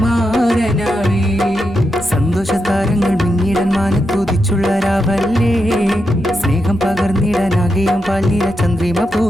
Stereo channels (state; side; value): normal; both; correlation 0.86